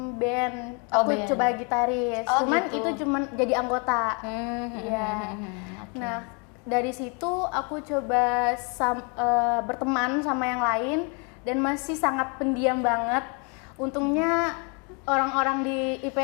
band, Oh, aku band. coba gitaris, Oh, cuman gitu. itu cuman jadi anggota. Iya. Oke. Nah dari situ aku coba berteman sama yang lain dan masih sangat pendiam banget. Untungnya orang-orang di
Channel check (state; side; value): quieter; right; 35.3 dB